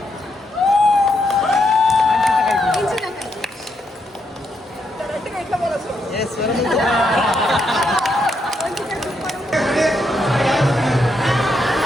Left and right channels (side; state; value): both; normal; correlation 0.79